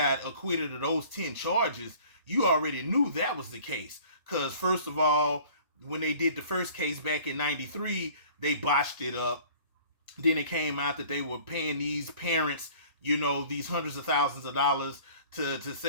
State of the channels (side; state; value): both; inverted; correlation -0.50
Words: acquitted of those 10 charges, you already knew that was the case. Because first of all, when they did the first case back in 93, they botched it up. Then it came out that they were paying these parents, these hundreds of thousands of dollars to